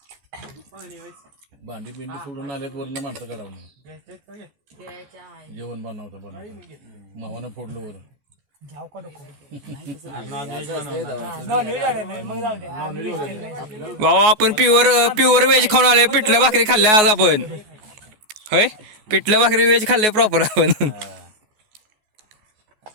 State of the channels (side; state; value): left; late; 14 ms